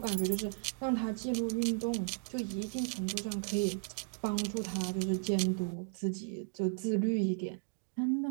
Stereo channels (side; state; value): left; silent; 54 dB below the other